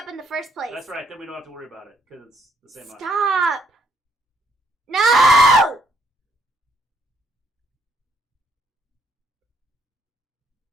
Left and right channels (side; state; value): both; normal; correlation 0.70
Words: in the first place. That's right, then we don't have to worry about it, because it's the same eye. Stop! No!